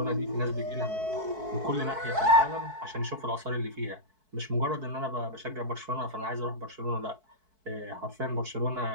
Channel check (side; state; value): left; late; 4.6 ms